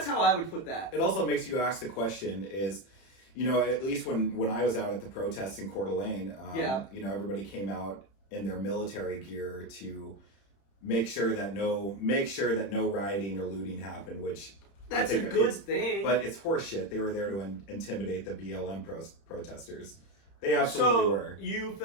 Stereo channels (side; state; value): right; late; 31 ms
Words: how I would put that. It also makes you ask the question is, at least when I was out at the protests in Coeur d'Alene, everybody came out in their military gear to make sure that no rioting or looting happened, which that's a good thing. But it's horseshit. They were there to intimidate the BLM protesters. They absolutely were. You